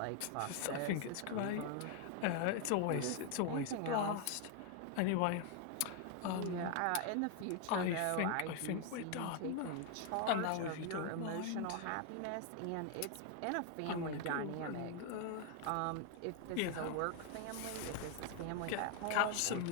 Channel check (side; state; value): both; different; correlation 0.00